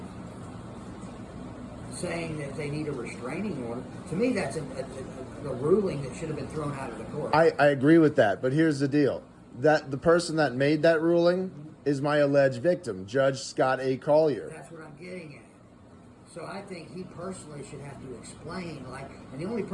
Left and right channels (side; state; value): both; identical; correlation 1.00